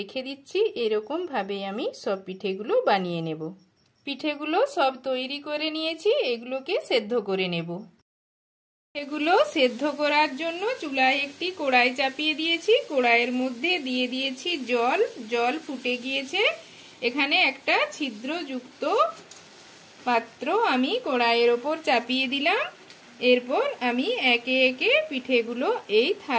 দিচ্ছি। এরকম ভাবে আমি সব পিঠেগুলো বানিয়ে নেব। পিঠেগুলো সব তৈরি করে নিয়েছি, এগুলোকে সেদ্ধ করে নেব। এগুলো সেদ্ধ করার জন্য চুলায় একটি কড়াই চাপিয়ে দিয়েছি। কড়াইয়ের মধ্যে দিয়ে দিয়েছি জল। জল ফুটে গিয়েছে। এখানে একটা ছিদ্রযুক্ত পাত্র আমি কড়াইয়ের ওপর চাপিয়ে দিলাম। এরপর আমি একে একে পিঠেগুলো এই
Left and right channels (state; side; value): identical; both; correlation 1.00